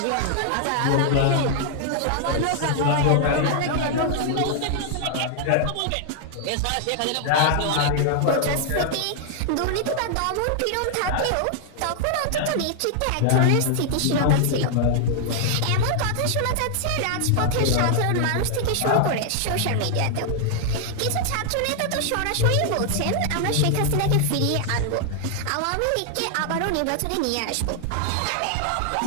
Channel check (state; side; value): different; both; correlation 0.00